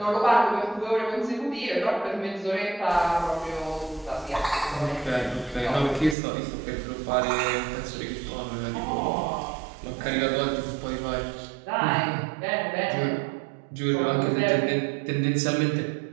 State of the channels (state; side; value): drops out; left; at 6.2 s